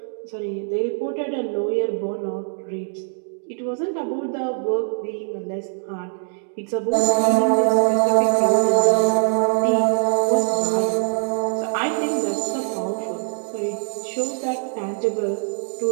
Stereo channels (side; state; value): left; silent; digital silence